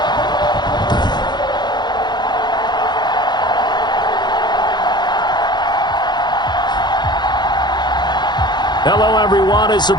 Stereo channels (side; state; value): right; late; 0.21 ms